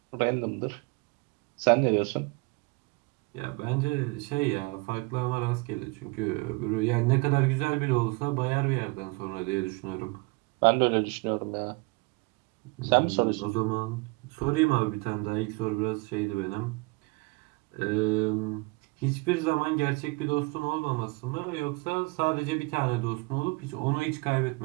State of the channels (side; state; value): left; quieter; 26.8 dB